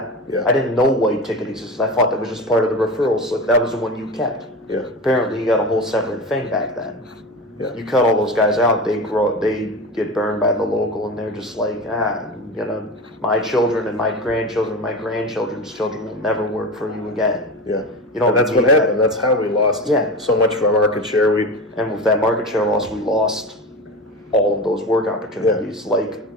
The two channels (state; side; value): normal; both; correlation 0.26